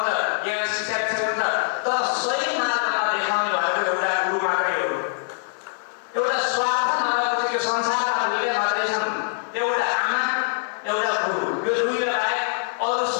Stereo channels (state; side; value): silent; right; digital silence